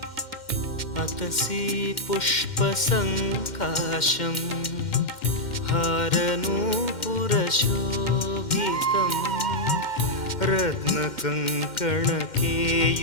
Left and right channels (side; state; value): right; late; 2.1 ms